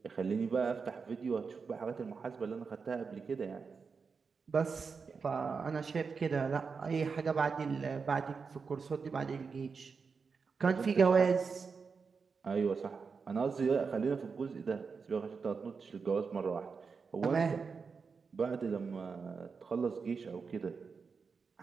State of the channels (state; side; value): quieter; left; 5.3 dB